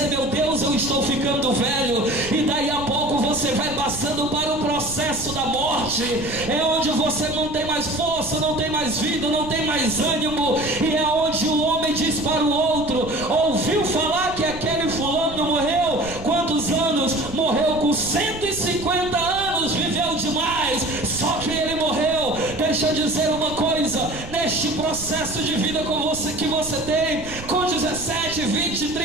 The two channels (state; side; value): noise; right; rumble, 13 dB below the sound